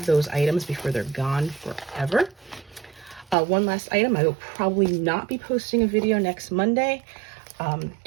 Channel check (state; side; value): drops out; left; at 3.4 s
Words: those items before they're gone forever. One last item, I will probably not be posting a video next Monday